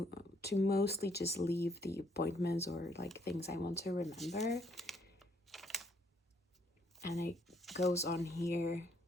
mostly just leave the appointments or like things I want to remember. And it goes on here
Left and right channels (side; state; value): both; normal; correlation 0.68